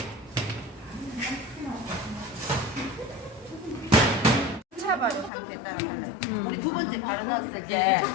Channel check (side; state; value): right; drops out; at 5.3 s